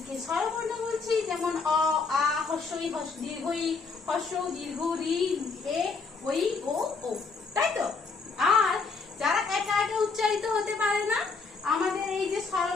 স্বরবর্ণ বলছি। যেমন অ, আ, হস্য ই, দীর্ঘ ই, হস্য উ, দীর্ঘ রি, এ, ওই, ও, ও, তাই তো? আর যারা একা একা উচ্চারিত হতে পারে না, আমাদের এই যে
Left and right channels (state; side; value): quieter; right; 4.5 dB